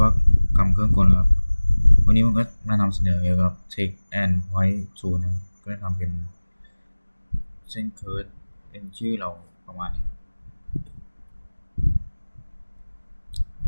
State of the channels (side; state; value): both; inverted; correlation -1.00